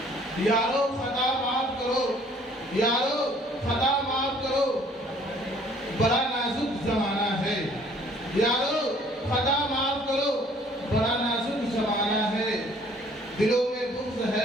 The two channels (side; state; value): both; normal; correlation 0.57